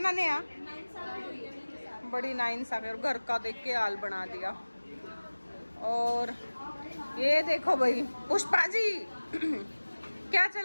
नेहा? बड़ी नाइंसाफी। और घर का देख के हाल बना दिया। और ये देखो भाई पुष्पा जी क्या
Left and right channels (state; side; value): inverted; both; correlation -1.00